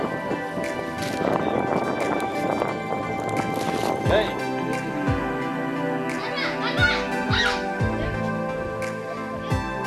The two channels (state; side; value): identical; both; correlation 1.00